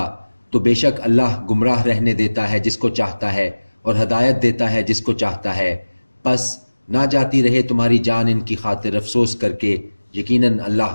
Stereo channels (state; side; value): inverted; both; correlation -1.00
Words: تو بے شک اللہ گمراہ رہنے دیتا ہے جس کو چاہتا ہے اور ہدایت دیتا ہے جس کو چاہتا ہے۔ پس نہ جاتی رہے تمہاری جان ان کی خاطر افسوس کر کے، یقیناً